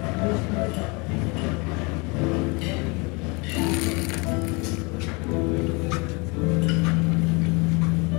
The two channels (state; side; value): quieter; right; 28.8 dB